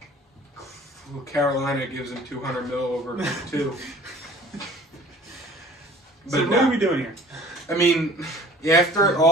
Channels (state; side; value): normal; both; correlation 0.49